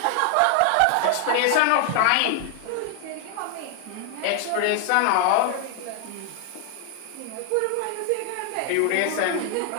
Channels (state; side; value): different; both; correlation 0.00